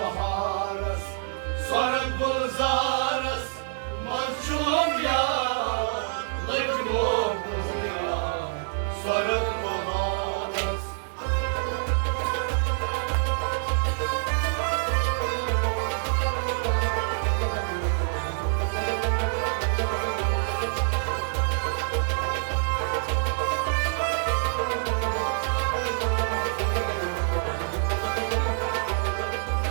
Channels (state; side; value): silent; left; digital silence